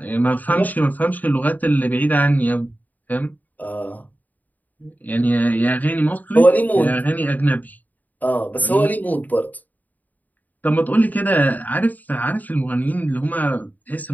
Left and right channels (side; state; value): right; late; 0.081 ms